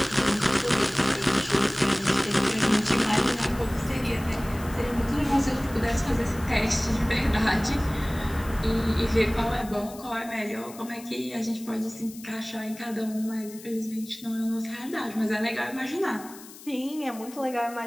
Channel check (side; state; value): left; noise; hiss, 18 dB below the sound